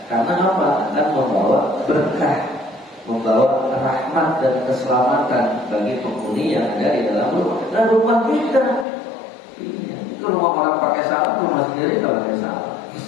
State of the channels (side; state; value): right; drops out; at 8.8 s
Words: Karena apa? Akan membawa berkah, membawa rahmat dan keselamatan bagi penghuni yang ada di dalam rumah. Dan rumah kita, itu rumah orang pakai salam, rumah sendiri kalau pakai salam.